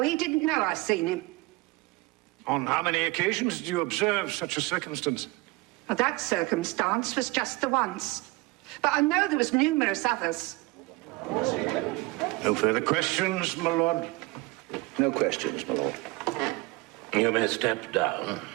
he didn't know I seen him. On how many occasions did you observe such a circumstance? Well, that circumstance was just the once. But I know there was numerous others. No further questions, my lord? No questions, my lord. You may step down.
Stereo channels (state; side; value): quieter; left; 23.0 dB